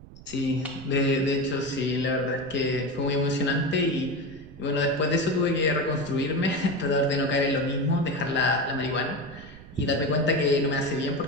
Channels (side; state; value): right; noise; rumble, 18 dB below the sound